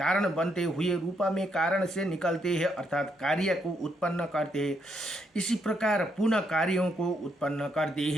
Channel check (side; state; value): both; normal; correlation 0.76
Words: बनते हुए रूपा में कारण से निकलते हैं, अर्थात कार्य को उत्पन्न करते हैं, इसी प्रकार पुनः कार्यों को उत्पन्न करते